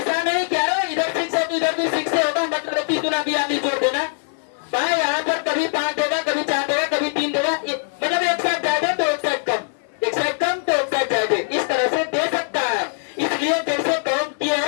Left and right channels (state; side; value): silent; right; 65 dB below the other